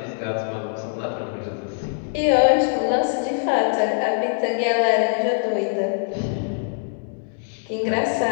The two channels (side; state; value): right; silent; 62 dB below the other